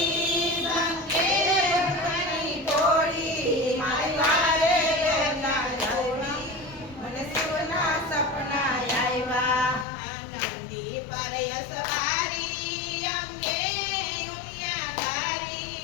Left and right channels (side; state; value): right; drops out; at 9.9 s